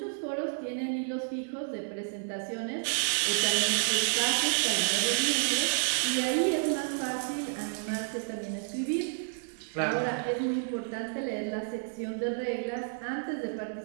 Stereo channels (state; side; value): silent; left; digital silence